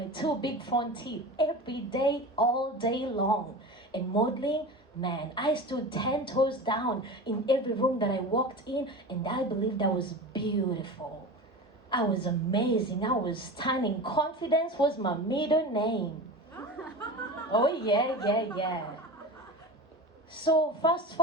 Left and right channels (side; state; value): both; normal; correlation 0.30